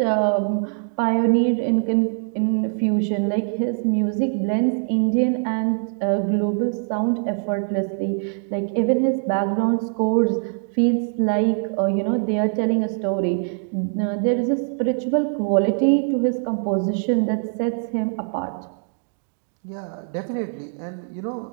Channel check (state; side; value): silent; left; 64 dB below the other